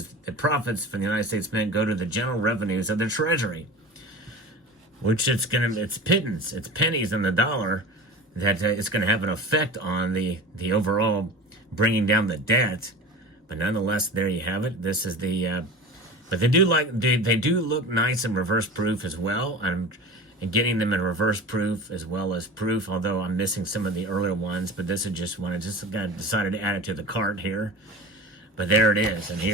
the profits from the United States Mint go to the general revenues of the Treasury, which it's pittance, it's pennies in the dollar that it's going to have an effect on the overall bringing down the debt. But nonetheless, there you have it. This is the, but they do look nice in reverse proof as well. And getting them in reverse proof as well as proof, although I'm missing some of the earlier ones, but this is just one. I just decided to add it to the cart here. But there it is. And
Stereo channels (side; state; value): both; normal; correlation 0.33